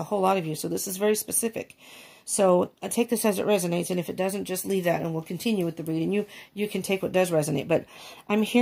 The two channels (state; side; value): identical; both; correlation 1.00